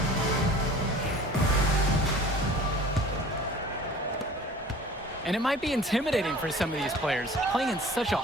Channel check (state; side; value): normal; both; correlation 0.45